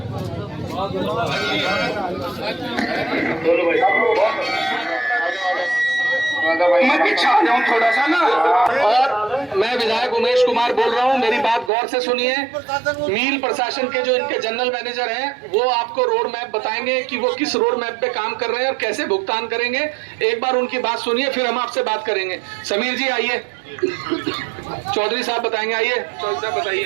मैं पीछे आ जाऊं थोड़ा सा ना। और मैं विधायक उमेश कुमार बोल रहा हूं, मेरी बात गौर से सुनिए। मील प्रशासन के जो इनके जनरल मैनेजर हैं वो आपको रोड मैप बताएंगे कि वो किस रोड मैप पे काम कर रहे हैं और कैसे भुगतान करेंगे। एक बार उनकी बात सुनिए, फिर हम आपसे बात करेंगे। समीर जी आइए। चौधरी साहब बताएंगे, आइए चौधरी साहब बताइए।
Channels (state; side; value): drops out; left; at 11.7 s